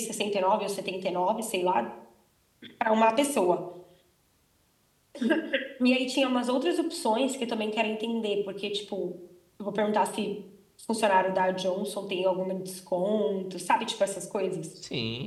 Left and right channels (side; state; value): both; identical; correlation 1.00